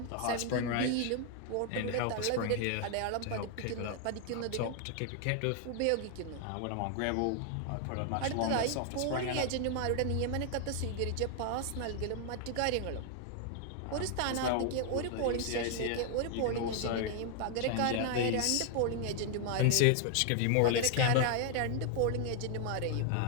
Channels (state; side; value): different; both; correlation 0.00